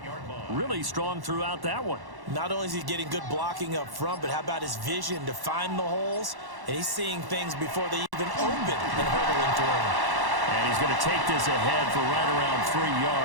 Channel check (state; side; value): late; left; 1.1 ms